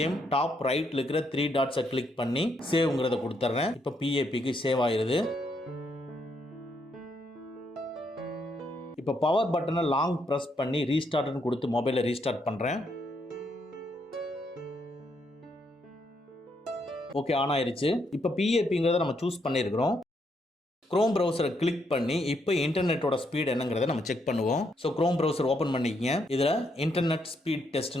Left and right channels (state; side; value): normal; both; correlation 0.76